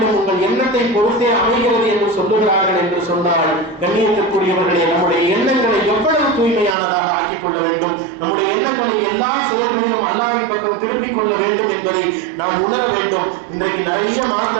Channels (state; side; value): drops out; left; at 6.8 s